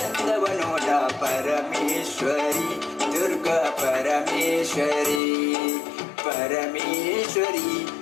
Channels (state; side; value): drops out; right; at 5.2 s